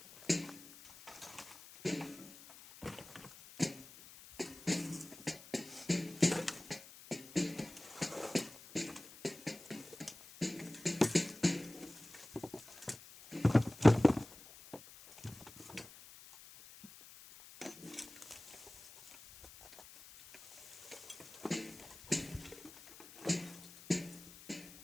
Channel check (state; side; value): noise; left; hiss, 18 dB below the sound